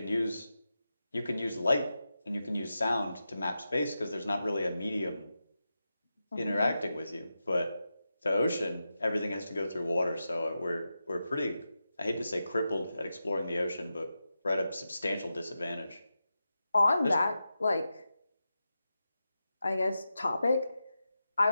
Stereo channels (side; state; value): both; inverted; correlation -0.90